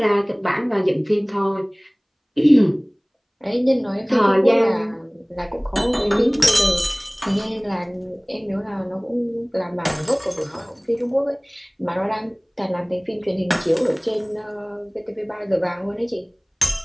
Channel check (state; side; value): identical; both; correlation 1.00